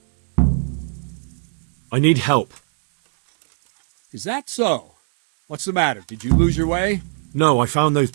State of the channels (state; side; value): silent; left; digital silence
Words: I need help. Is that so? What's the matter? Did you lose your way? No, I found those